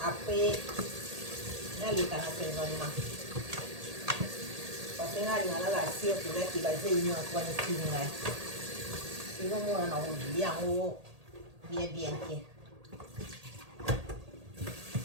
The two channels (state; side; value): late; left; 1.8 ms